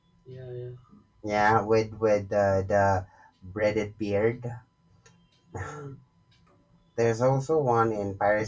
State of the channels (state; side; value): identical; both; correlation 1.00